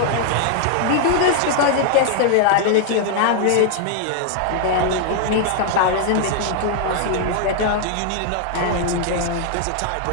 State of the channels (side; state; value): both; different; correlation 0.00